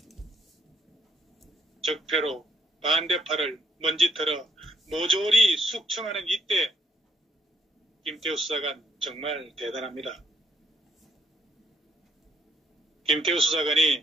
적폐로 반대파를 먼지털어 모조리 숙청하는 이때 김태우 수사관 정말 대단합니다. 김태우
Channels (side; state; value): both; normal; correlation 0.69